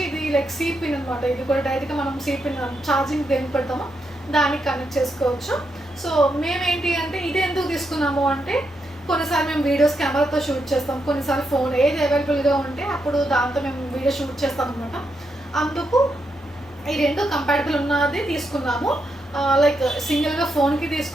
ఇది లైక్ సి పిన్ అనమాట, ఇది కూడా డైరెక్ట్గా మనం సి పిన్ ఛార్జింగ్ దేనికి పెడతామో దానికి కనెక్ట్ చేసుకోవచ్చు. సో మేమేంటి అంటే ఇది ఎందుకు తీసుకున్నాము అంటే కొన్నిసార్లు మేము వీడియోస్ కెమెరాతో షూట్ చేస్తాం, కొన్నిసార్లు ఫోన్ ఏది అవైలబుల్గా ఉంటే అప్పుడు దాంతో మేము వీడియో షూట్ చేస్తాం అనమాట. అందుకు ఈ 2 కంపాటబుల్ ఉన్నది తీసుకున్నాము. లైక్ సింగిల్గా ఫోన్కి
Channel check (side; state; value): both; normal; correlation 0.82